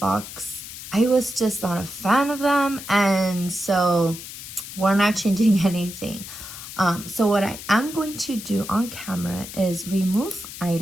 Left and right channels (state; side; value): noise; left; hiss, 12 dB below the sound